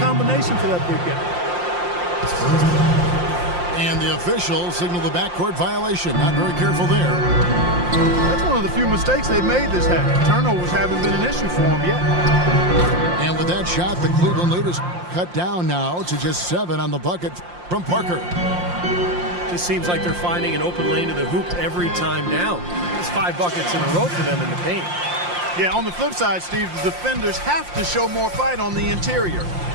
for that big guy. And the officials signal the backcourt violation. Not very careful there. That's one of the few mistakes they've made this half. Turnovers haven't been an issue for them yet. And with that shot, the Cleveland lead is cut down now to just 7 on the bucket from Parker. Just seems like they're finding an open lane to the hoop every time down. It's 5 buckets in a row for them in the paint. Yeah, on the flip side, Steve, the defenders have to show more fight on the interior.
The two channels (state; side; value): late; left; 5.7 ms